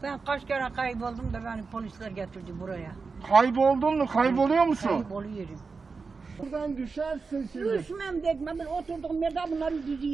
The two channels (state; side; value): quieter; left; 4.6 dB